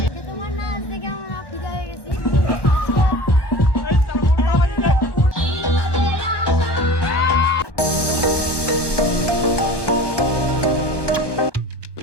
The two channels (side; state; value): right; late; 1.1 ms